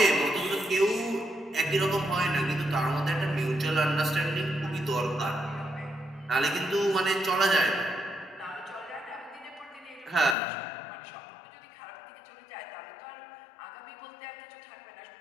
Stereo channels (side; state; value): right; drops out; at 10.4 s